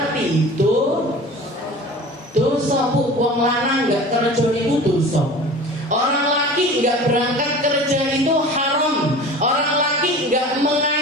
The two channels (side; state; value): both; normal; correlation 0.39